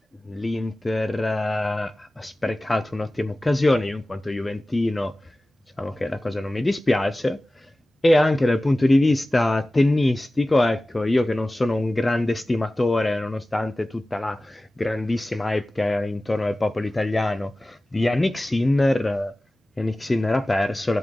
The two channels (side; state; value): both; normal; correlation 0.97